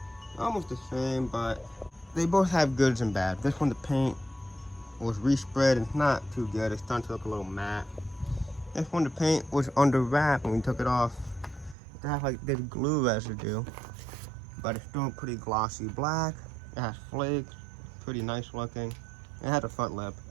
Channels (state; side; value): drops out; left; at 11.8 s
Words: Almost the same, but they both have goods and bad. This one, the paint was respread and it's not too good. It's starting to look a little matte. This one, the paint was under wrap when we took it off. It had like this glue residue, but it's still pretty glossy black. It has flakes, pretty nice looking. It had a front lip.